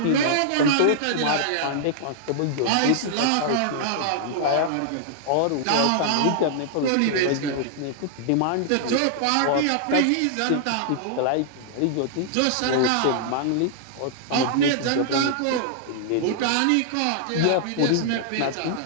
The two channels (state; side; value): different; both; correlation -0.01